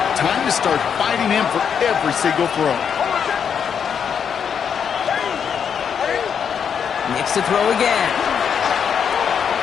Time to start fighting him for every single throw. Nix to throw again.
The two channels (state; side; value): quieter; right; 7.4 dB